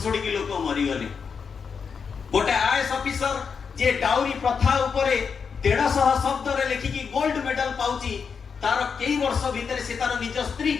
की लोक मरी गले। गोटे आईएएस ऑफिसर जे डाउरी प्रथा उपरे 150 शब्द रे लिखिकी गोल्ड मेडल पाउची, तार कई वर्ष भितर से तार निज स्त्री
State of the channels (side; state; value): right; quieter; 6.0 dB